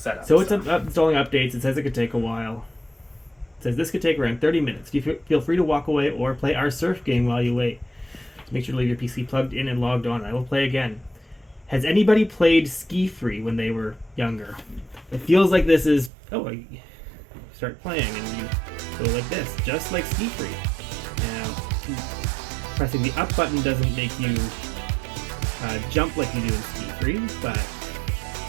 So it's installing updates. It says it could take a while. It says this could take around 30 minutes. Feel free to walk away or play our surf game while you wait. Make sure to leave your PC plugged in and logged on. I will play again. Has anybody played Ski Free when they were younger? It feels like this is... Oh, you start playing and you go like this, just like Ski Free. Now, pressing the up button doesn't make you jump like you do in Ski Free, but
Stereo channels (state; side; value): drops out; left; at 16.1 s